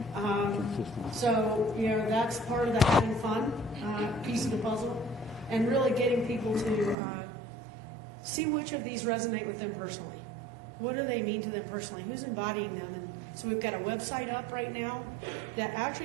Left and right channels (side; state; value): left; drops out; at 7.0 s